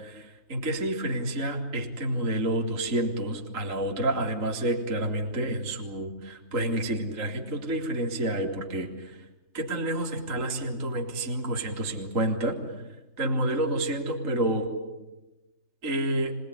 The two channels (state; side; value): late; left; 3.3 ms